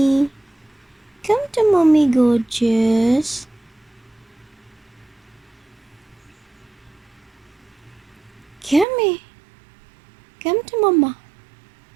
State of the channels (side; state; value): left; drops out; at 8.8 s